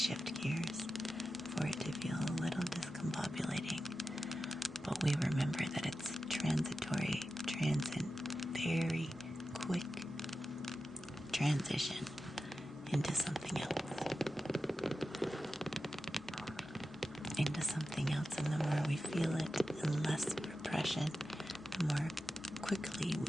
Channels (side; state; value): both; normal; correlation 0.92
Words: gears, for it to feel a little discombobulating. But we remember that it's transitory, transient, very quick transition into something else. Into something else, and the more we feel it and less repression, the more quickly